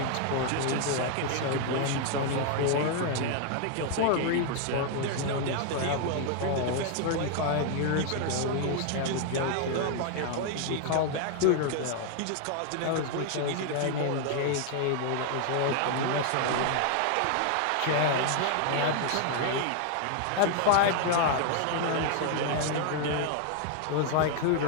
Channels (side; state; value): both; different; correlation 0.00